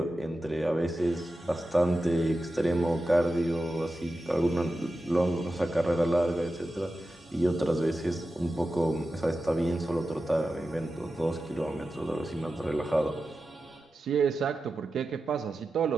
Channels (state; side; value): normal; both; correlation 0.92